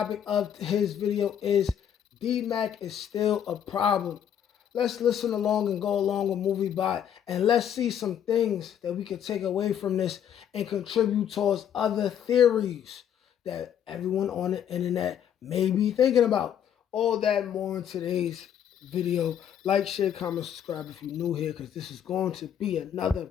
of his video is Dmac is still a problem. Let's listen along and go along with Movie Bot, and let's see some things that we can take away from this and contribute towards other theories that everyone on the internet may be thinking about. All that and more in today's video. Like, share, comment, subscribe if you're new here, because this is going to be another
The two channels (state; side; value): quieter; right; 9.2 dB